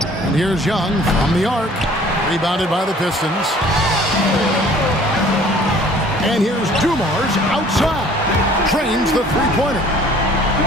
And here's Young from the arc. Rebounded by the Pistons. And here's Dumars outside. Trains the three-pointer.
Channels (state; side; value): normal; both; correlation 0.53